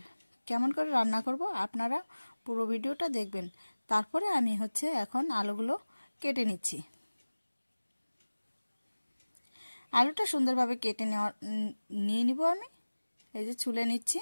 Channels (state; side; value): inverted; both; correlation -1.00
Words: কেমন করে রান্না করব আপনারা পুরো ভিডিওটা দেখবেন। তারপরে আমি হচ্ছে এখন আলুগুলো কেটে নিচ্ছি। আলুটা সুন্দরভাবে কেটে নিয়ে নিব। আমি এই যে ছুলে নিচ্ছি।